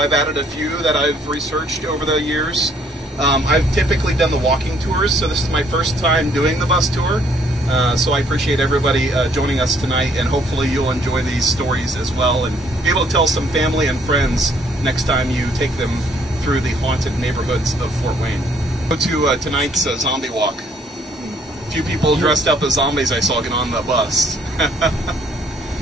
added a few that I've researched over the years. I've typically done the walking tours, so this is my first time doing the bus tour. So I appreciate everybody joining us tonight, and hopefully you'll enjoy these stories as well and be able to tell some family and friends next time you take them through the haunted neighborhoods of Fort Wayne. Go to tonight's zombie walk. A few people dressed up as zombies I saw get on the bus.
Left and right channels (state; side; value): normal; both; correlation 0.64